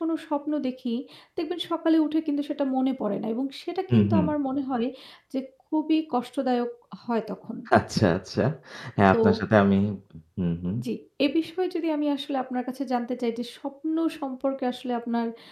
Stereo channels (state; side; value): identical; both; correlation 1.00